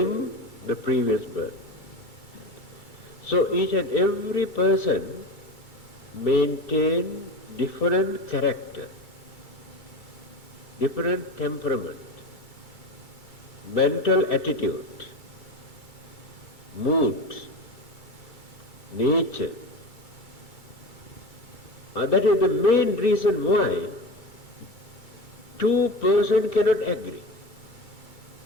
the previous birth. So each and every person maintain different character, different temperament, mental attitude, mood, nature. That is the main reason why two persons cannot agree.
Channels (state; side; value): late; right; 2.3 ms